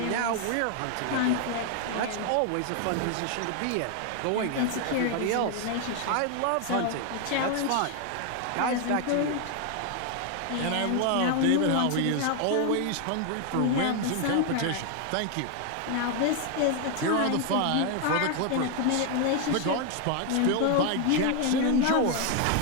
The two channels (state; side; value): different; both; correlation 0.00